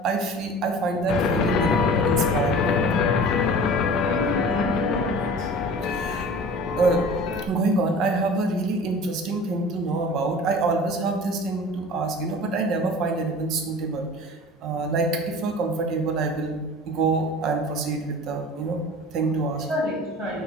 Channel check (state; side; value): normal; both; correlation 0.40